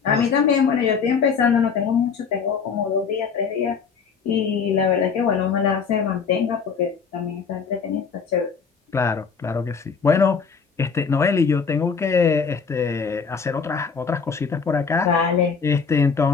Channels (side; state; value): right; quieter; 5.8 dB